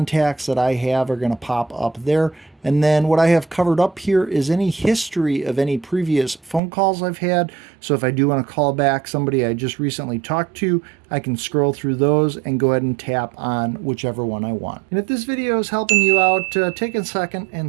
that I have are going to pop up there. And then what I have covered up here is any history of any previous phone calls I've had. So if I do want to call back somebody I just recently talked to, I can scroll through those and go ahead and tap on whichever one I want. And if this video is helping you out, take a second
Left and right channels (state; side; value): drops out; left; at 6.6 s